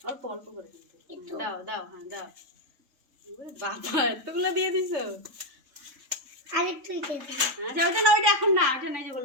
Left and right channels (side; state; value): left; late; 3.5 ms